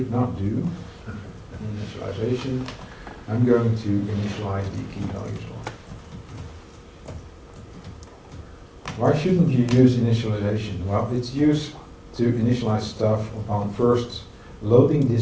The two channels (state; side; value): identical; both; correlation 1.00